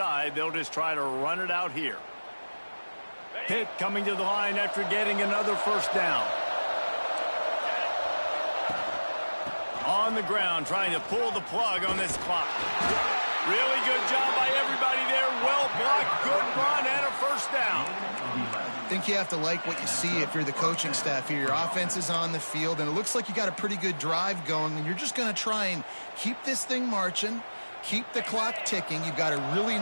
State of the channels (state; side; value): inverted; both; correlation -1.00